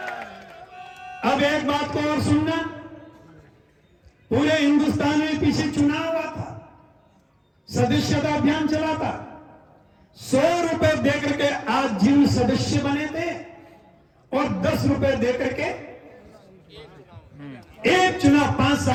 अब एक बात को और सुनना, पूरे हिंदुस्तान में पीछे चुनाव हुआ था, सदस्यता अभियान चला था। 100 रुपए देकर के आज जिन सदस्य बने थे और 10 रुपए देकर के एक चुनाव 5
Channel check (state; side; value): identical; both; correlation 1.00